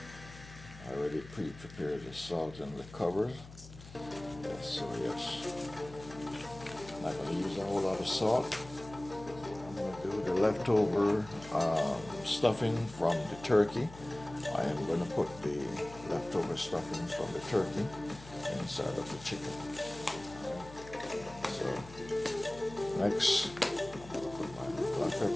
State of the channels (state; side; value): noise; left; hum, 17 dB below the sound